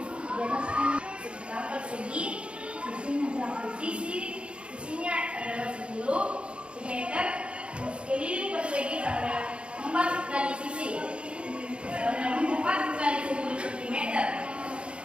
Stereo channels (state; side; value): late; left; 0.058 ms